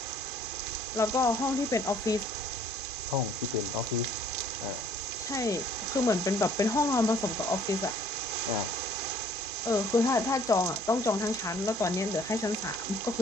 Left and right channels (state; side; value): normal; both; correlation 0.58